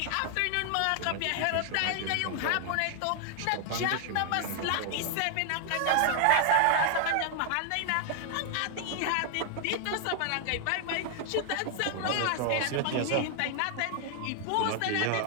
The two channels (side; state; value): both; different; correlation 0.00